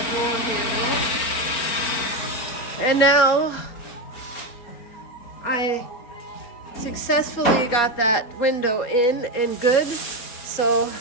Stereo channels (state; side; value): late; right; 4.4 ms